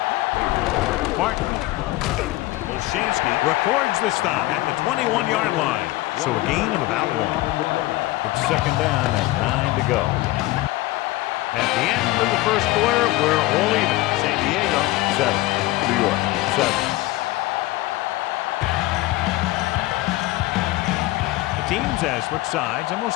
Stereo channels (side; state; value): right; quieter; 18.4 dB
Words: Martin. Olshansky records the stop at the 21-yard line. So a gain of about 1. It's 2nd down and 9 to go. At the end of the first quarter, we're all even. San Diego, 7. New York, 7. The teams have switched sides, and we'll